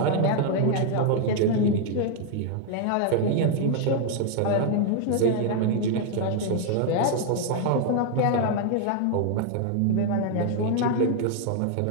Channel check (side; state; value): both; different; correlation 0.00